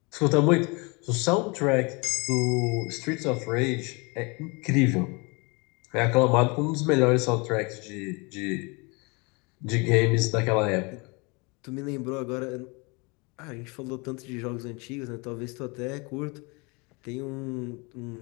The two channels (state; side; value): quieter; right; 29.1 dB